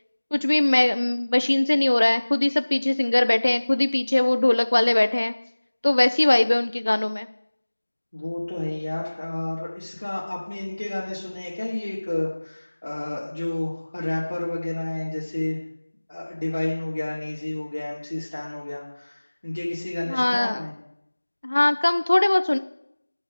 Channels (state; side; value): inverted; both; correlation -1.00